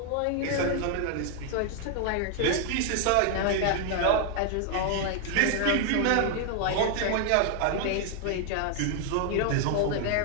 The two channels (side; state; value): both; different; correlation 0.00